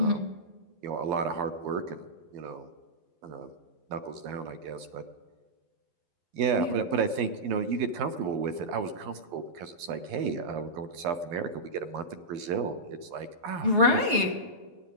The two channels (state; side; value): late; left; 12 ms